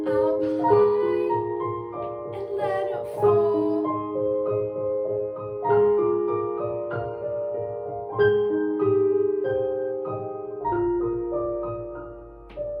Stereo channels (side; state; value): both; identical; correlation 1.00